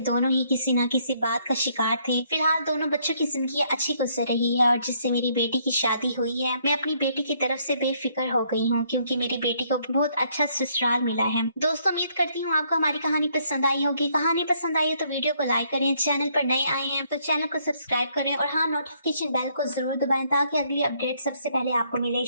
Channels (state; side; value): inverted; both; correlation -0.68